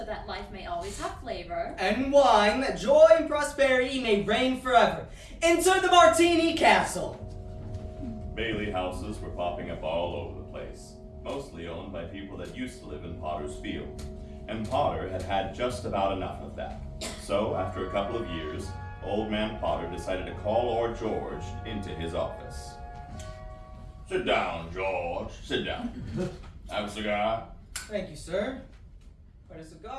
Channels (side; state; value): both; identical; correlation 1.00